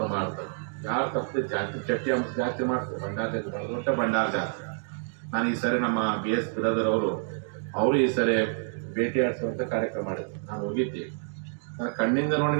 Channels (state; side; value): silent; left; 59 dB below the other